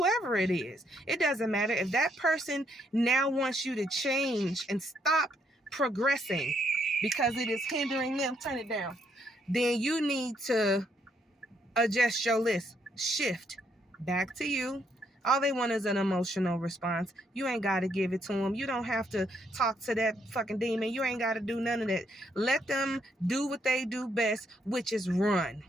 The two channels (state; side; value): normal; both; correlation 0.73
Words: is. It doesn't matter. If that person now wants you to change and stop progressing because it is hindering them, turn it down, then you need to adjust your list. Shift back to you. All they want is an emotional response. You ain't got to give it to them. You don't have to talk to that fucking demon. You ain't got to do none of that. Let them do what they do best, which is run.